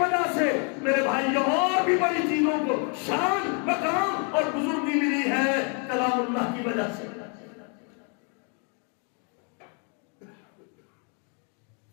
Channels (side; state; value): right; quieter; 38.3 dB